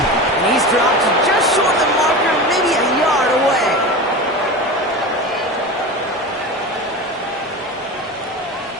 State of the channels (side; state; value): both; normal; correlation 0.28